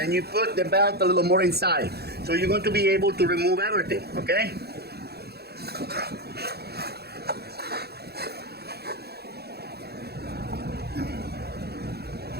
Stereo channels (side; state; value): left; late; 0.47 ms